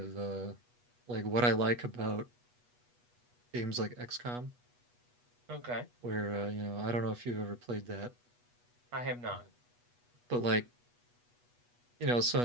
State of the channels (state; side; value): late; left; 8.2 ms